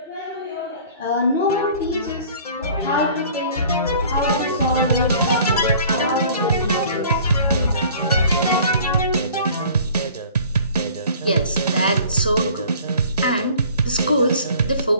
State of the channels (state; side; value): inverted; both; correlation -0.49